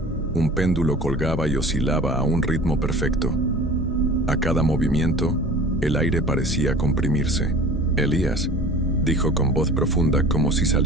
un péndulo colgaba y oscilaba a un ritmo perfecto. A cada movimiento, el aire parecía comprimirse. «Elías», dijo con voz profunda como si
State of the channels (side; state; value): both; normal; correlation 0.42